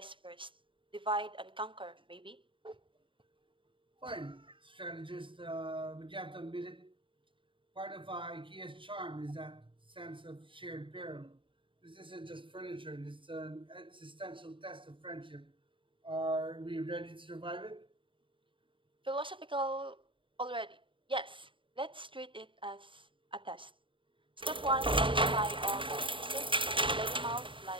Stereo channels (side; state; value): left; late; 0.25 ms